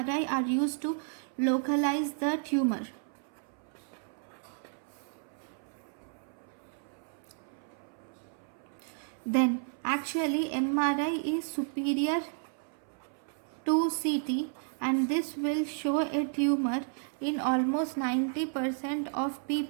are used to localize the tumor. Then actually MRI is superior to CT, and this will show a tumor in almost 90% of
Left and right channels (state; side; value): silent; left; 56 dB below the other